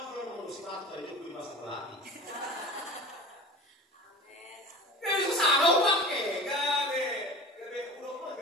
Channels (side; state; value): both; normal; correlation 0.36